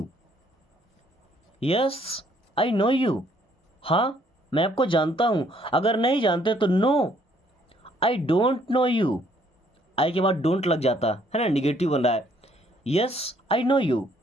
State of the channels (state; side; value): normal; both; correlation 0.65